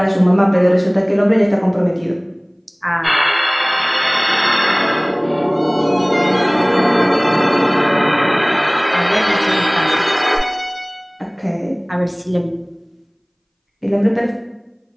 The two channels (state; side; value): identical; both; correlation 1.00